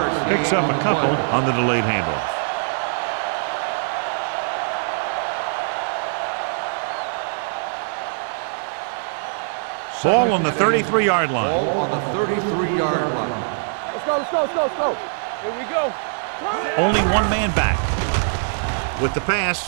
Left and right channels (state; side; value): silent; left; 64 dB below the other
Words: picks up a couple on the delayed handoff. Ball on the 33-yard line. Ball on the 33-yard line. Let's go. Here we go. Only one man back. With the